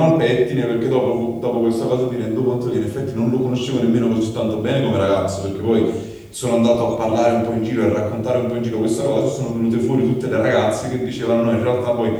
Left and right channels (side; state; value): both; identical; correlation 1.00